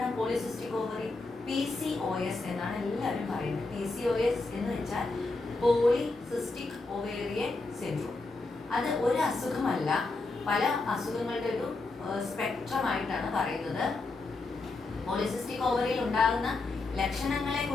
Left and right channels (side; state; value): right; quieter; 3.4 dB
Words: പോളിസിസ്റ്റിക് ഓവറി? PCOS എന്നാണ് എല്ലാവരും പറയുന്നത്. PCOS എന്ന് വെച്ചാൽ പോളിസിസ്റ്റിക് ഒവേറിയൻ സിൻഡ്രോം. അത് ഒരു അസുഖമല്ല, പല അസുഖങ്ങളുടെ ഒരു സ്പെക്ട്രമായിട്ടാണ് പറയുന്നത്. പോളിസിസ്റ്റിക് ഓവറിയിൽ ഉണ്ടാകുന്ന ലക്ഷണങ്ങളെ